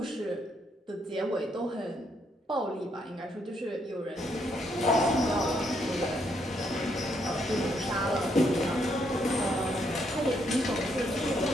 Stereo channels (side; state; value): both; normal; correlation 0.74